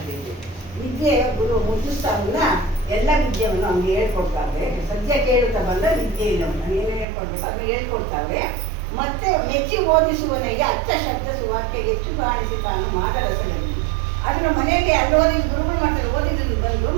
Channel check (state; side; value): drops out; left; at 7.1 s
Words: ವಿದ್ಯೆ ಗುರು ಮುದ್ದುಸ್ತಾವನ್ನ ಎಲ್ಲ ವಿದ್ಯೆಯನ್ನು ನಮ್ಗೆ ಹೇಳ್ಕೊಡ್ತಾವೆ. ಸದ್ಯ ಕೇಳುತ್ತಾ ಬಂದ ವಿದ್ಯೆ ಇಲ್ಲ ಏನು ಹೇಳ್ಕೊಡ್ಬೇಕು ಅದು ಹೇಳ್ಕೊಡ್ತಾವೆ. ಮತ್ತೆ ಮೆಚ್ಚಿ ಓದಿಸುವನಿಗೆ ಅಚ್ಚ ಶಬ್ದ ಸುವಾಕ್ಯ ಹೆಚ್ಚು ಕಾಣಿಸಿ ತಾನು ಮಾಡರಸದಲ್ಲಿ ಅದನ್ನು ಮನೆಯಲ್ಲಿ ಅಲ್ಲೋದಿ ಗುರುಗಳು ಮಾಡ್ತಾರೆ. ಓದಿದ್ರು ಬಂದು